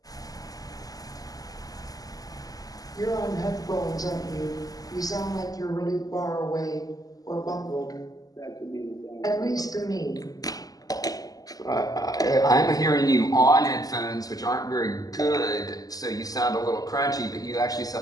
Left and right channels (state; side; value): late; right; 0.17 ms